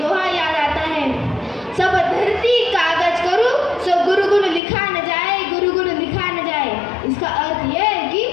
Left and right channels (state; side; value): drops out; right; at 4.6 s